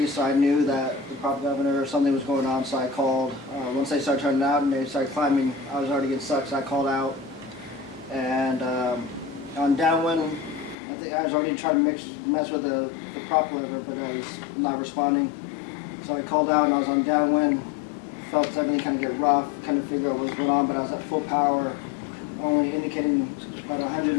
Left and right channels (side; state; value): right; drops out; at 10.8 s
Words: so I knew that the prop governor or something was going on, so I called. Once they started turning out and they started climbing, I was already getting stuck, so I called out. And on downwind, I think I was already trying to mess with the prop lever, but I was not responding. So I called out and I was on downwind, felt everything kind of get rough, kind of figure out what was going on, but I was at full power, only indicating about